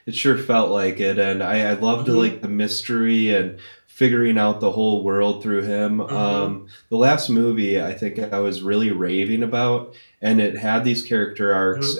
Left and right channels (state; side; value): inverted; both; correlation -1.00